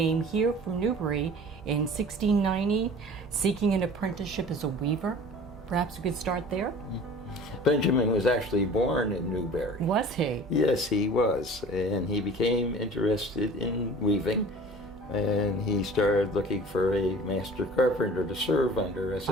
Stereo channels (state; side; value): normal; both; correlation 0.43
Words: here from Newbury in 1690, seeking an apprenticeship as a weaver. Perhaps we could start there? Benjamin was actually born in Newbury. Was he? Yes, he was. And he became interested in weaving. And he started looking for a master carpenter to serve under as